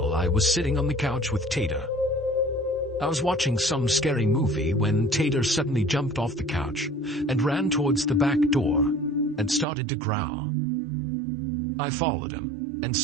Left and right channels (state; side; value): drops out; left; at 9.7 s